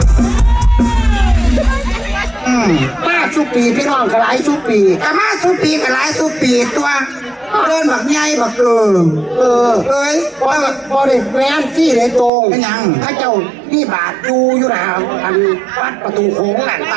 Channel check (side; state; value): left; drops out; at 12.3 s